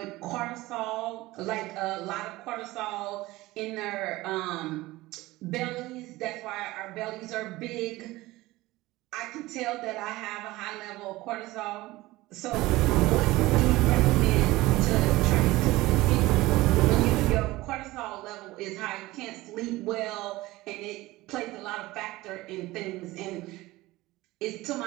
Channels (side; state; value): left; quieter; 19.0 dB